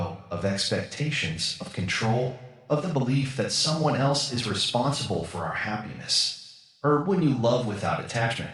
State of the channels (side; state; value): both; identical; correlation 1.00